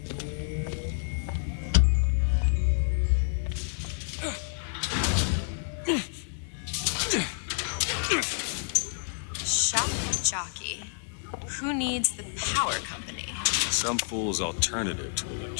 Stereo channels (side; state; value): right; silent; 59 dB below the other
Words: Shock jockey. Who needs the power company? Some fool's alternative to